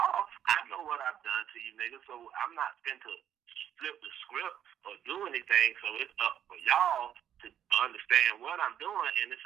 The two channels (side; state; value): left; quieter; 10.0 dB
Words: I know what I've done to you niggas, so I'm not going to flip the script or do anything. So it's up for y'all to understand what I'm doing, and it's